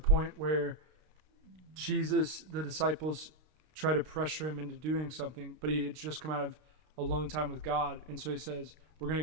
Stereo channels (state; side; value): late; left; 32 ms